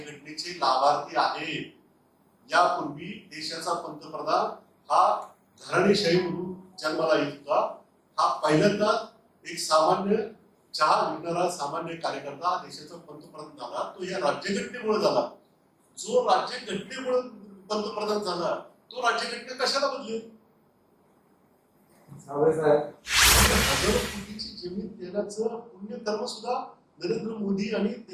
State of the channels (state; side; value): identical; both; correlation 1.00